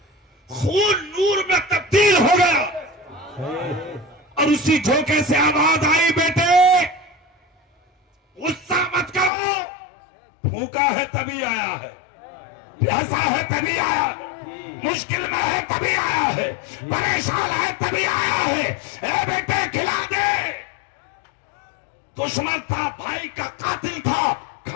خون نور میں تبدیل ہو گیا اور اسی جھونکے سے آواز آئی بیٹے غصہ مت کرو, بھوکا ہے تبھی آیا ہے، پیاسا ہے تبھی آیا ہے، مشکل میں ہے تبھی آیا ہے، پریشان ہے تبھی آیا ہے۔ اے بیٹے کھلا دے۔ دشمن تھا، بھائی کا قاتل تھا،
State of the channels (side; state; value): right; drops out; at 9.3 s